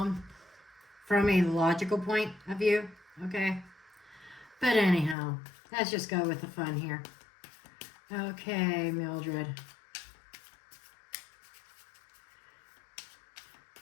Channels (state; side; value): drops out; right; at 5.2 s